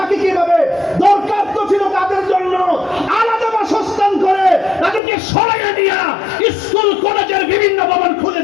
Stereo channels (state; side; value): drops out; right; at 5.0 s